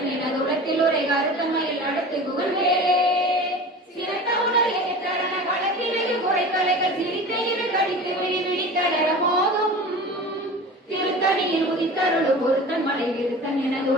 என துளத்தில் உரை கருத்தன்மையில் நடத்துகுவன் வேலே சிறந்த உணர் எதிர்த்தரண களத்திலேயே குறைத்தலைகள் சிரித்த இரு கடித்து விழித்தளர மோதும் திருத்தணியில் உதித்தருளும் ஒருத்தன் மலை விருத்தன் என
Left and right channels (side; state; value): both; normal; correlation 0.36